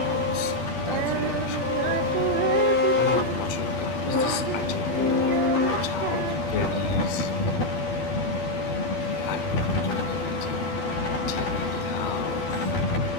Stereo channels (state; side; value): late; right; 12 ms